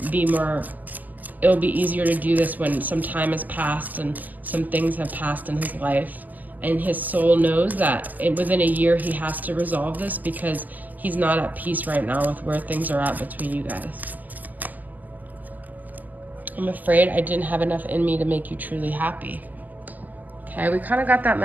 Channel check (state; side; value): late; left; 0.082 ms